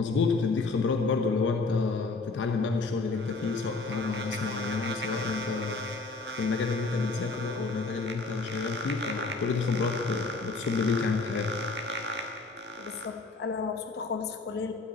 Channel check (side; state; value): right; quieter; 3.7 dB